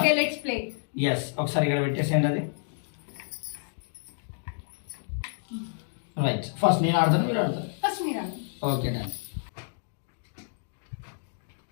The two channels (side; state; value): right; silent; digital silence